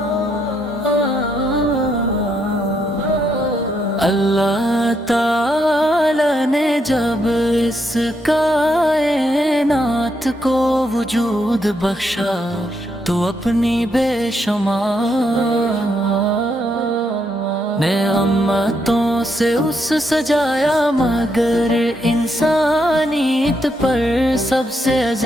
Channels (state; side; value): normal; both; correlation 0.78